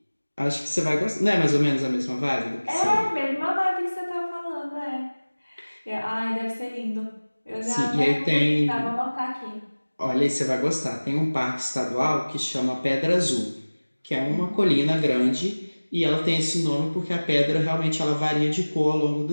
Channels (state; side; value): inverted; both; correlation -1.00